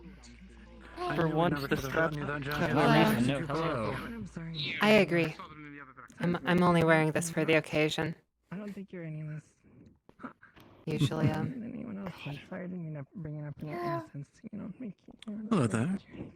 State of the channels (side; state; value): both; identical; correlation 1.00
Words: For once, the straps have no reason. I agree. I'm only wearing this for the occasion. I don't think you're any less. Usually, anyone else. I'm sorry, I didn't mean to bring it up in your innocence. Make you. Hello there.